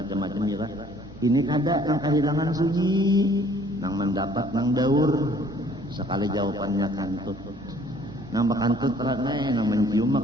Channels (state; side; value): normal; both; correlation 0.57